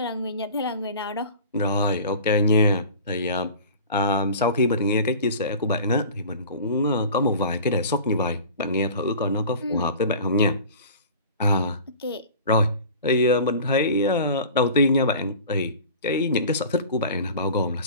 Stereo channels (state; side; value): inverted; both; correlation -0.40